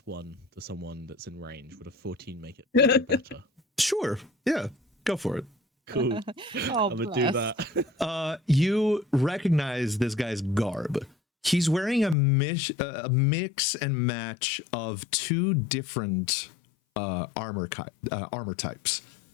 to someone that's in range. Would a 14 make it better? Sure. Yeah. Go for it. Cool. Oh, I'm going to do that. You recognize this guy's garb. He's wearing a mix and match of two different armor types.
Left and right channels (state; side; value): drops out; right; at 12.2 s